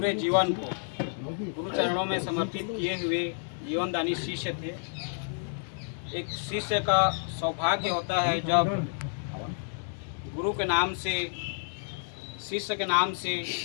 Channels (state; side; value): silent; right; digital silence